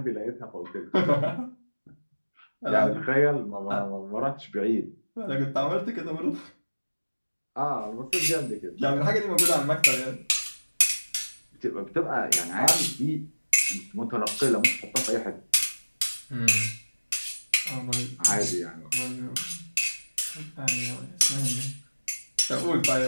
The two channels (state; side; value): inverted; both; correlation -1.00